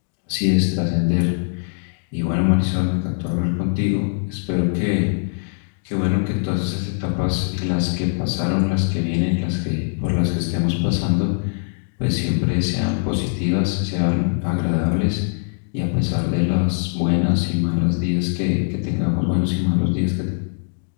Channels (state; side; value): silent; right; digital silence